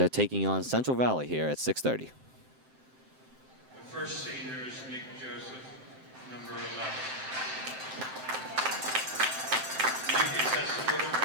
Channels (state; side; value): late; left; 7.7 ms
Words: taking on Central Valley here at 6:30. The first senior is Nick Joseph, number 11. Nick is escorted